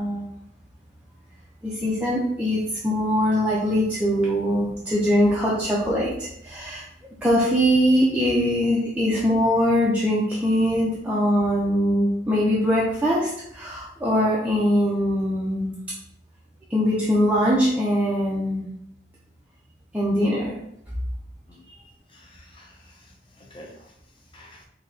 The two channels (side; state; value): both; normal; correlation 0.71